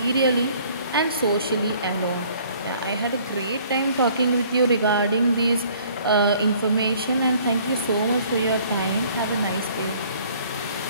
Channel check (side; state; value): both; inverted; correlation -0.56